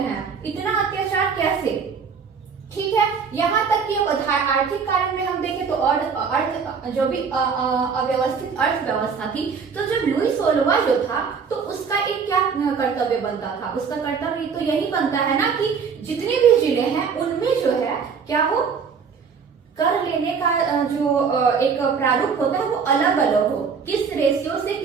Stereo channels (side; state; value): left; quieter; 6.0 dB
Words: हैं, इतना अत्याचार कैसे? ठीक है, यहाँ तक कि अब आर्थिक कारण में हम देखें तो और अर्थ जो भी अव्यवस्थित अर्थव्यवस्था थी, तो जब लुई 16वां जो था तो उसका एक क्या कर्तव्य बनता था, उसका कर्तव्य तो यही बनता है ना कि जितने भी जिले हैं उनमें जो है क्या हो, कर लेने का जो एक प्रारूप होता है वो अलग अलग हो, किस रेशियो से